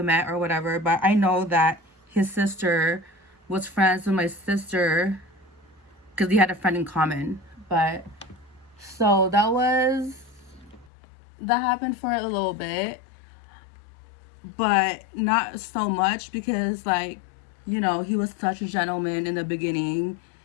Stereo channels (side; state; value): right; drops out; at 10.9 s